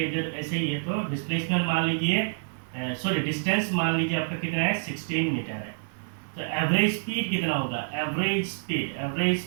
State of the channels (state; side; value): silent; left; 60 dB below the other